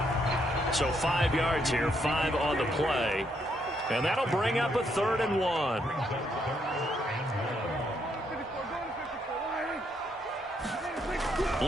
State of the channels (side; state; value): both; normal; correlation 0.75